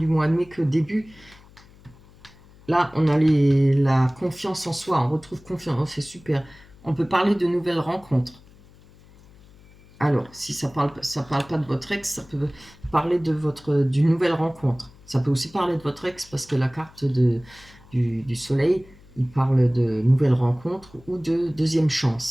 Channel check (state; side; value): noise; left; hum, 25 dB below the sound